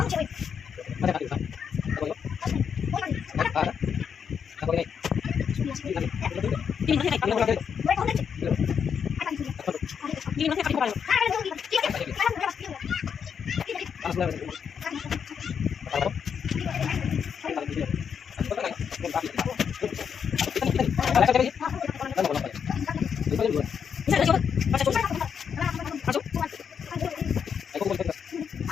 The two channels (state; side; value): quieter; right; 7.2 dB